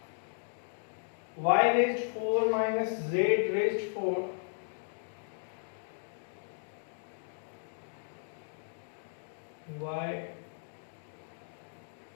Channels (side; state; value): right; silent; digital silence